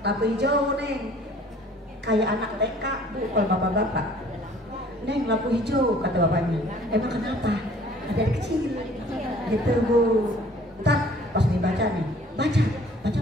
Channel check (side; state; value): both; normal; correlation 0.53